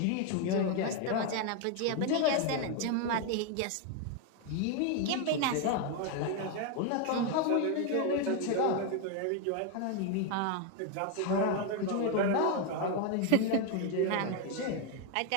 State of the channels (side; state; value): both; different; correlation 0.01